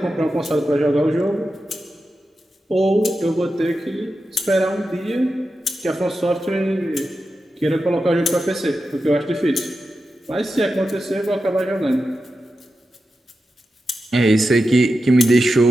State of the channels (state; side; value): normal; both; correlation 0.91